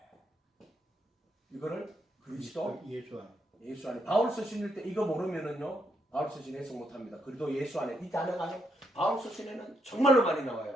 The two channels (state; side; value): normal; both; correlation 0.78